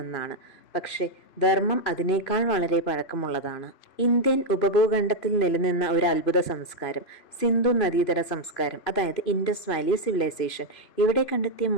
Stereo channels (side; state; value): right; late; 3.0 ms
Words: പക്ഷേ ധർമ്മം അതിനേക്കാൾ വളരെ പഴക്കമുള്ളതാണ്. ഇന്ത്യൻ ഉപഭൂഖണ്ഡത്തിൽ നിലനിന്ന ഒരു അത്ഭുത സംസ്കാരം, സിന്ധു നദീതട സംസ്കാരം, അതായത് ഇൻഡസ് വാലി സിവിലൈസേഷൻ. ഇവിടെ കണ്ടെത്തിയ